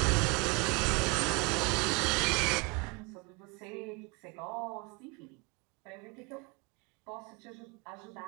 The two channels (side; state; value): left; quieter; 28.4 dB